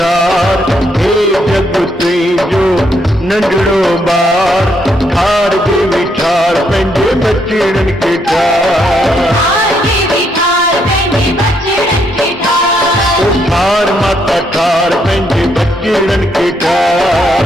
हे जग तुई जो नंढड़ो ॿार ठार के बिठार पंहिंजे बचड़न के ठार ठार माता ठार पंहिंजे बचड़न के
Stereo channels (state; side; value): normal; both; correlation 0.74